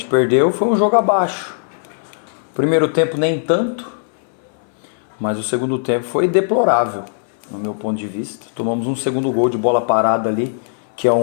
perdeu, foi um jogo abaixo. Primeiro tempo nem tanto, mas o segundo tempo foi deplorável, no meu ponto de vista. Tomamos um segundo gol de bola parada ali, que é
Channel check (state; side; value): silent; right; 61 dB below the other